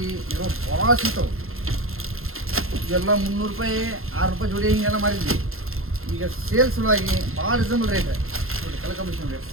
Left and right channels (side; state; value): left; late; 0.61 ms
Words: ಇರೋ ಭಾಳ ಸಿಗ್ತಾವೆ. ಇವೆಲ್ಲ 300 ರೂಪಾಯಿ 6 ರೂಪಾಯಿ ಜೋಡಿ ಹಿಂಗೆಲ್ಲ ಮಾರಿದ್ವಿ. ಈಗ ಸೇಲ್ಸ್ ಸಲುವಾಗಿ ಭಾಳ ರೀಸನಬಲ್ ರೇಟ್ ನೋಡಿ. ಕಲರ್ ಕಾಂಬಿನೇಷನ್ ರೇಟ್